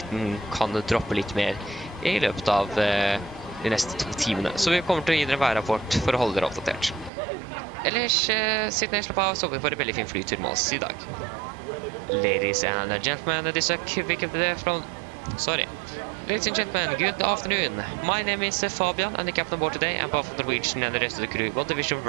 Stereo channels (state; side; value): drops out; left; at 7.1 s